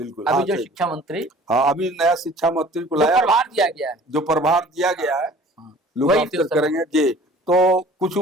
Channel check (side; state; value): both; normal; correlation 0.48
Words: अभी जो शिक्षा मंत्री, हाँ अभी नया शिक्षा मंत्री को लाया, प्रभार दिया गया है, जो प्रभार दिया गया है, लोग करेंगे जी। तो कुछ